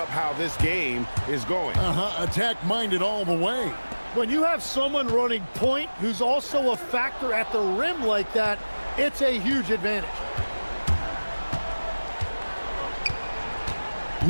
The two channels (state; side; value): inverted; both; correlation -1.00